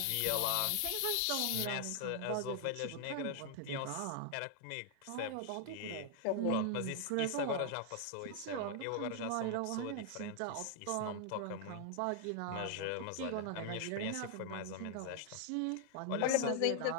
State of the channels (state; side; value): different; both; correlation 0.00